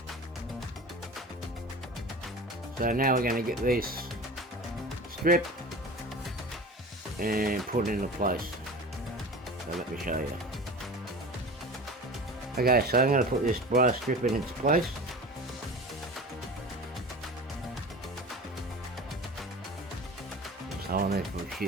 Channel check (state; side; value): normal; both; correlation 0.35